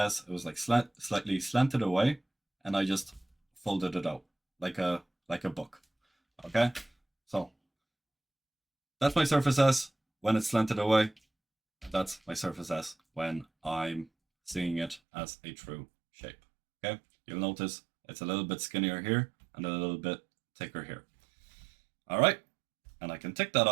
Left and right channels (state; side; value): drops out; left; at 15.0 s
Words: It was like slightly slanted away, and I just folded it out like a book. Okay, so that's my surface S when it's slanted away. That's my surface S when I'm seeing it as a true shape. Okay, you'll notice it's a little bit skinnier here and a little bit thicker here. All right, and I can tick that